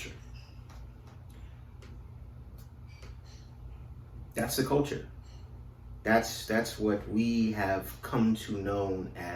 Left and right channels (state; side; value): identical; both; correlation 1.00